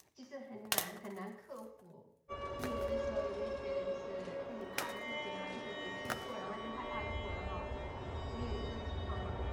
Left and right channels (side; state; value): both; identical; correlation 1.00